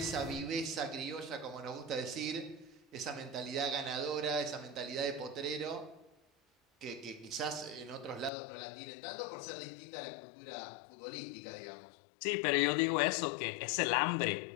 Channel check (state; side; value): drops out; right; at 8.3 s